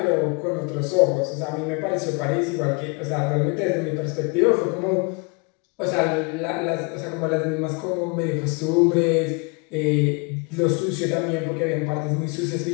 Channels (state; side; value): quieter; right; 31.5 dB